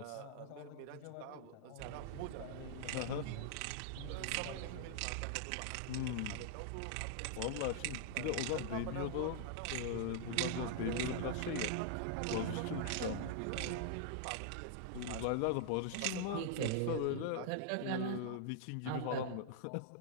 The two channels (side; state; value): both; different; correlation -0.01